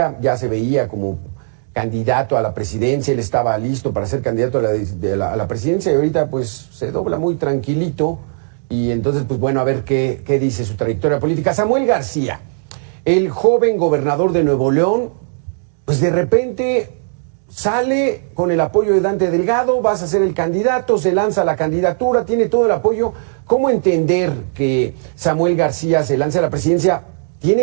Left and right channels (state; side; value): silent; left; digital silence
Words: ya se veía como candidato a la presidencia, él estaba listo para ser candidato a la presidencia y ahorita pues se dobla muy tranquilito y entonces pues bueno, a ver qué dice su trayectoria política. Samuel García, el joven gobernador de Nuevo León, pues de repente sale con el apoyo de Dante Delgado, vas a ser el candidato, se lanza la candidatura, tiene todo el apoyo. ¿Cómo entender que Samuel García se lance a la presidencia?